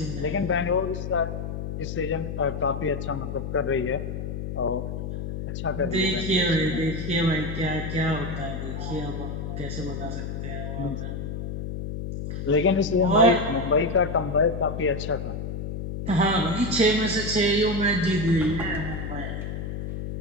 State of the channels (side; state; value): left; noise; hum, 5 dB below the sound